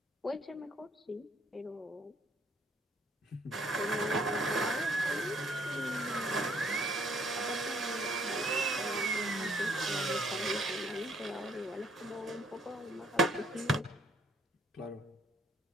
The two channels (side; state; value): both; normal; correlation 0.64